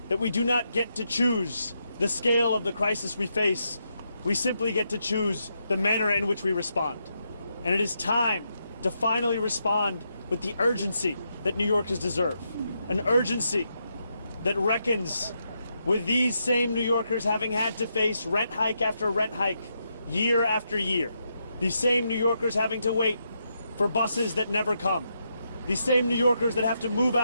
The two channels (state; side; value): inverted; both; correlation -0.82